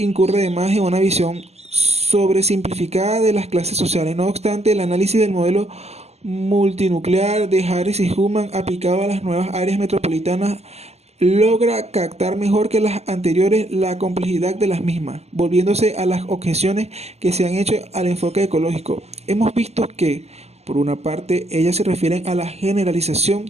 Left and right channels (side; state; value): left; late; 0.30 ms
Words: además en una visión sobresimplificada de las clases sociales. No obstante, el análisis del modelo multinuclear de Harris y Hullman aplicado a las nuevas áreas metropolitanas logra captar mejor que las anteriores la complejidad de las mismas, volviéndose a las objeciones que se han hecho al enfoque ecológico. Hemos visto que, por una parte, ellas se refieren a la generalización